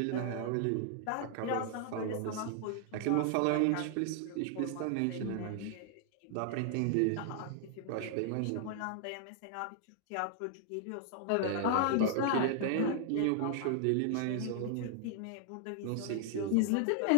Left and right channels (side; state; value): both; different; correlation 0.00